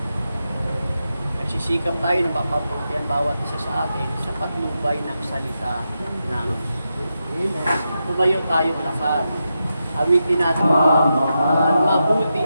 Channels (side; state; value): both; inverted; correlation -0.87